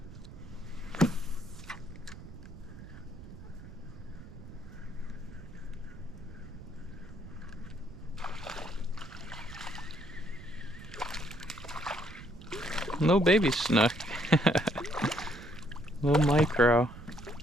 No baby snook. Little micro.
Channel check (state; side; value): noise; right; rumble, 14 dB below the sound